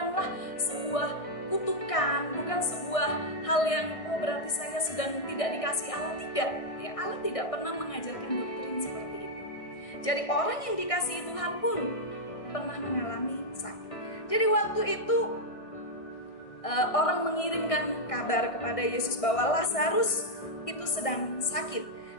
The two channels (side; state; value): right; late; 1.6 ms